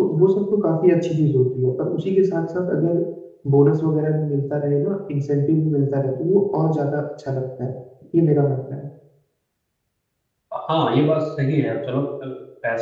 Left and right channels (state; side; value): identical; both; correlation 1.00